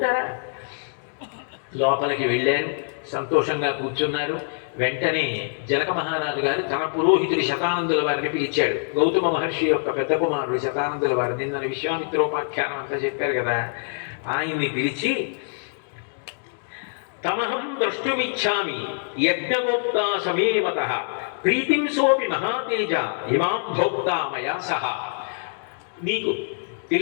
లోపలికి వెళ్ళారు, సంతోషంగా కూర్చున్నారు. వెంటనే జనక మహారాజు గారు తన పురోహితుడి శతానందుల వారిని పిలిచాడు. గౌతమ మహర్షి యొక్క పెద్ద కుమారుడు శతానందుల వారు, నిన్న విశ్వామిత్రోపాఖ్యానం అంతా చెప్పారు కదా, ఆయన్ని పిలిచి, తమహం ద్రష్టుమిచ్చామి యజ్ఞగోప్తా సమేవత ప్రీతిం సోపి మహాతేజ ఇమాం భోక్తా మయా సహ. నీకు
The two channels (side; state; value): right; silent; digital silence